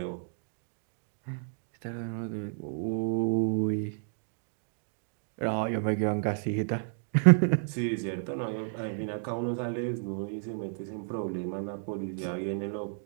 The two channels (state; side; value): silent; left; digital silence